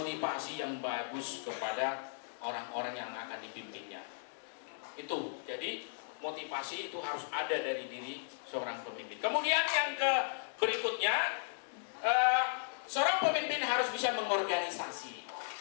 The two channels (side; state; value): right; silent; digital silence